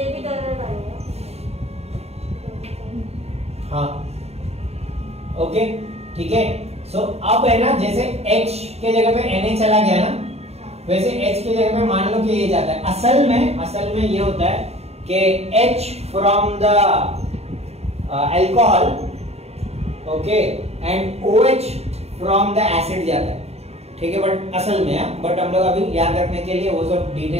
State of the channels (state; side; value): late; left; 0.30 ms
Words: भी डर आएगा। हाँ, ओके, ठीक है। सो अब है ना, जैसे H के जगह पे Na चला गया ना, वैसे H के जगह पे मान लो कि ये जाता है। असल में ये होता है कि H from the alcohol, okay, and OH from the acid जाता है। ठीक है, बट असल में है, बट हम लोग अभी याद रखने के लिए वो सब